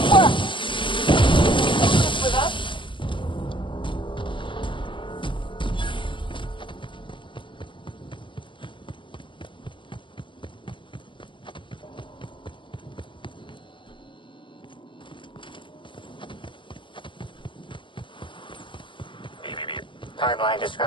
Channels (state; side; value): late; right; 0.24 ms